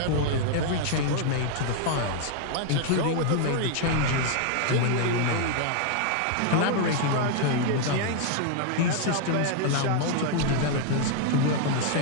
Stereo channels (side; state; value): both; different; correlation 0.00